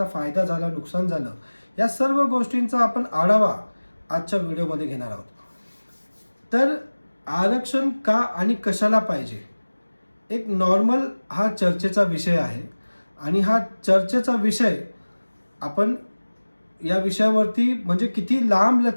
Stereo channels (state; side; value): inverted; both; correlation -1.00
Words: फायदा झाला, नुकसान झालं, या सर्व गोष्टींचा आपण आढावा आजच्या व्हिडिओमध्ये घेणार आहोत. तर आरक्षण का आणि कशाला पाहिजे, एक नॉर्मल हा चर्चेचा विषय आहे आणि हा चर्चेचा विषय आपण या विषयावरती म्हणजे किती लांब